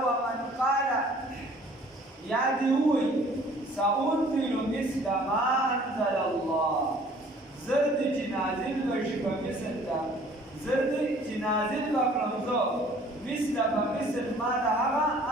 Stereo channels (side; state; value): both; normal; correlation 0.54